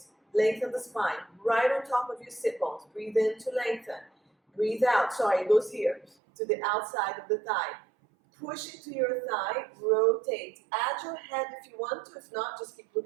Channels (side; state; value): left; drops out; at 6.1 s